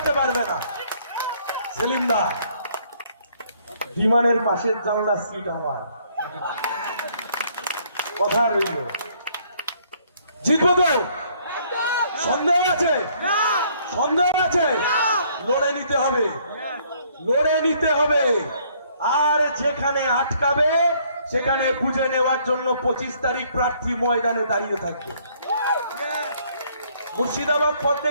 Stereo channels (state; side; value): inverted; both; correlation -0.64